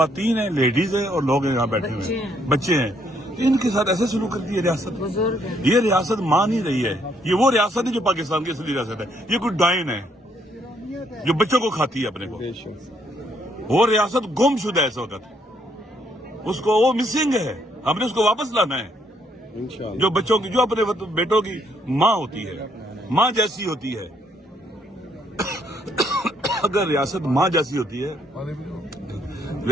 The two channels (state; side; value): normal; both; correlation 0.70